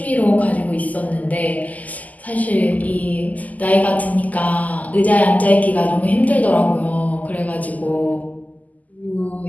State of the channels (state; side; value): late; right; 0.078 ms